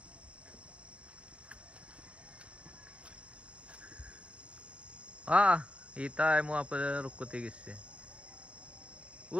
Itay mo apa rukutigis eh.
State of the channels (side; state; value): left; late; 0.061 ms